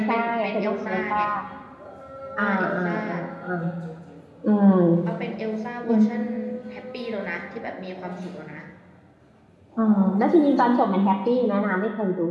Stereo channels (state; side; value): identical; both; correlation 1.00